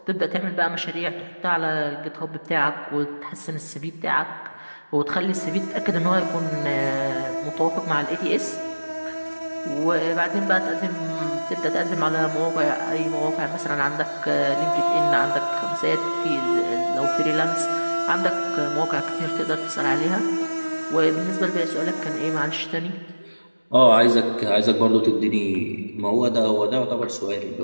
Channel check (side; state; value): both; inverted; correlation -1.00